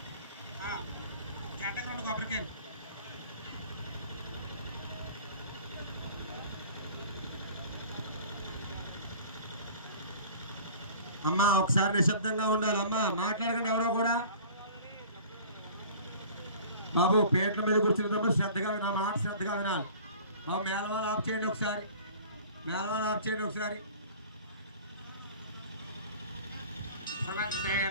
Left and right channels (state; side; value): inverted; both; correlation -0.45